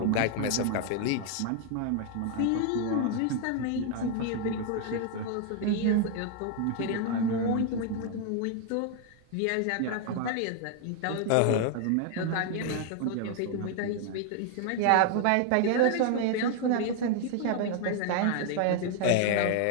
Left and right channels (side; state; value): both; different; correlation 0.00